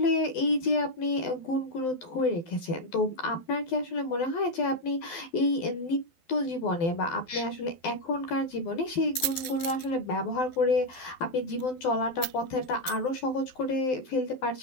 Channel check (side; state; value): right; late; 12 ms